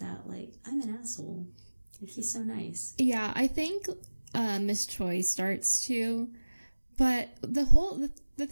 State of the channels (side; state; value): both; inverted; correlation -1.00